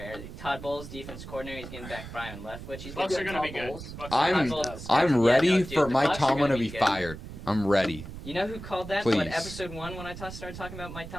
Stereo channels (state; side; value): noise; right; rumble, 12 dB below the sound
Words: Todd Bowles, defense coordinator, he's getting back Brian Leftwich. He's Bucks getting are going to be Todd good. Bowles. Bucks are I'm- gonna be Todd good. Bowles. I'm Yeah, ready no, dude, for the Mike Bucks are Tomlin gonna to be good. fired. I'm ready. You know who called that? Please. What episode 1 when I started talking about Mike